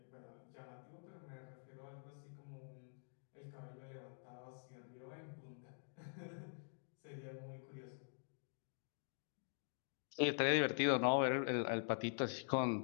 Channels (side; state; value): right; silent; digital silence